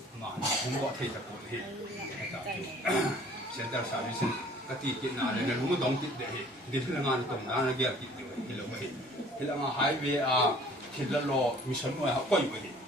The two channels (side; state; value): both; normal; correlation 0.53